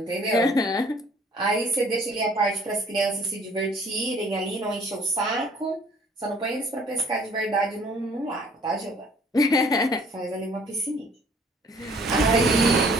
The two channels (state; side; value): normal; both; correlation 0.57